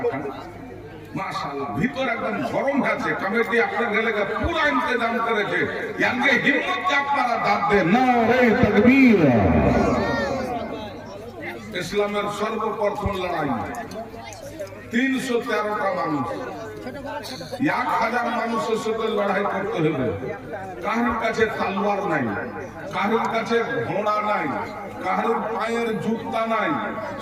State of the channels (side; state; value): both; identical; correlation 1.00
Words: মাশাআল্লাহ। ভিতর একদম গরম আছে, কমিটি আপনার এলাকা পুরো ইন্তজাম করেছে, ইয়াঙ্গে হিম্মতকে আপনারা দাঁত দেন না রে তাকবীর। ইসলামের সর্বপ্রথম লড়াই 313টা মানুষ, 1000 মানুষের সাথে লড়াই করতে হবে। কারোর কাছে তলোয়ার নাই, কারোর কাছে ঘোড়া নাই, কারোর পায়ের জুতা নাই,